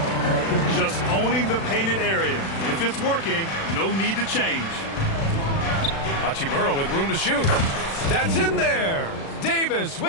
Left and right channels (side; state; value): right; late; 36 ms